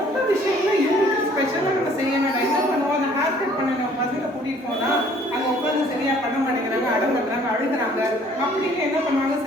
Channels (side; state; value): both; normal; correlation 0.57